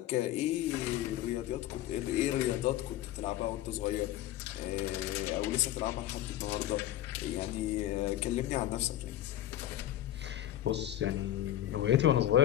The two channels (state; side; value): quieter; right; 13.0 dB